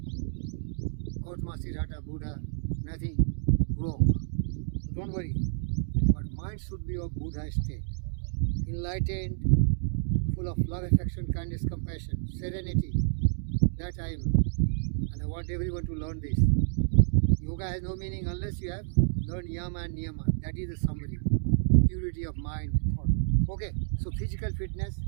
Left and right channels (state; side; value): silent; left; digital silence